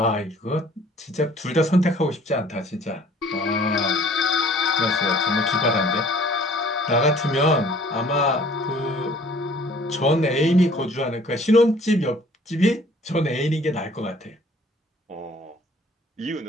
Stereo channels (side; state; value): both; normal; correlation 0.54